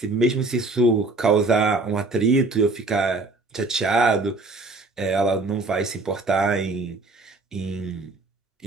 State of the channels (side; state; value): left; quieter; 3.3 dB